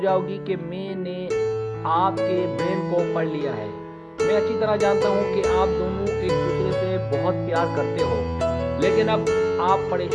कि मैंने आपके ब्रेन को पढ़ लिया है। मैं अच्छी तरह जानता हूँ कि आप दोनों एक दूसरे से बहुत प्यार करते हो, लेकिन अब आप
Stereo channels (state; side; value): identical; both; correlation 1.00